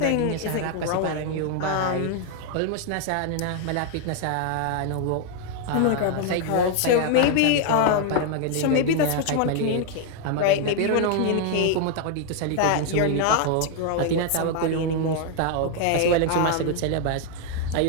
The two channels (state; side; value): different; both; correlation 0.00